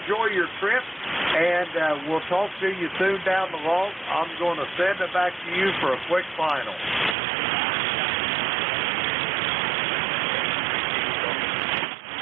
your trip, and we'll talk to you soon down the road. I'm going to send it back to you for a quick final.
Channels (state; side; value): drops out; left; at 7.2 s